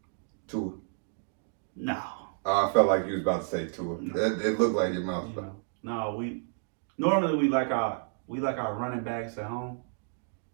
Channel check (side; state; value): left; silent; digital silence